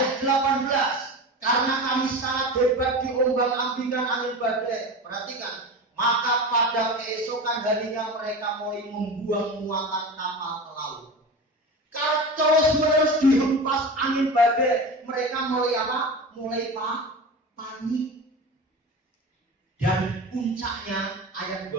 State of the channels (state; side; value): normal; both; correlation 0.29